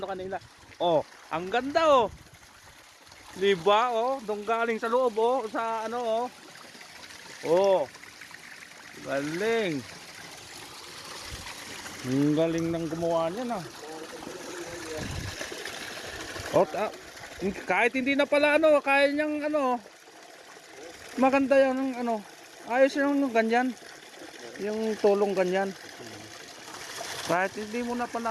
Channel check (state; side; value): identical; both; correlation 1.00